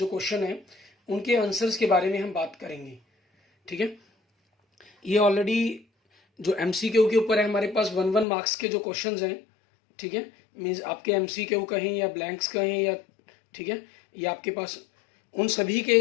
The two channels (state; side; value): drops out; right; at 8.2 s